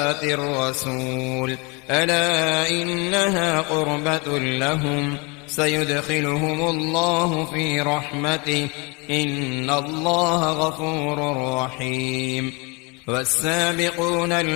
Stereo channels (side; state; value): right; quieter; 29.5 dB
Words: الرسول ألا إنها قربة لهم سيدخلهم الله في رحمته إن الله غفور رحيم. والسابقون